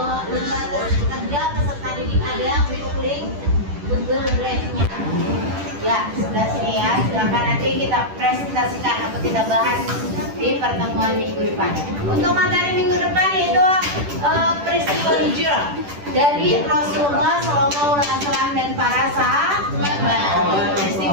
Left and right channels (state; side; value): late; left; 10 ms